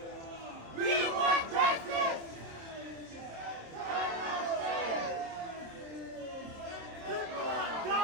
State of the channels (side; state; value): left; late; 27 ms